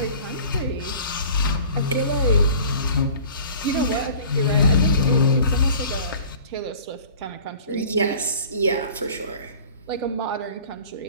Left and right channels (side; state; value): both; inverted; correlation -0.45